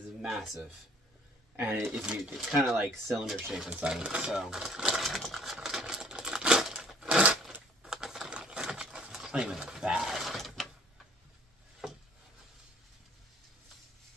massive, and it's kind of like cylinder shape inside of it. So, it's not even bad.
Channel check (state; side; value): normal; both; correlation 0.56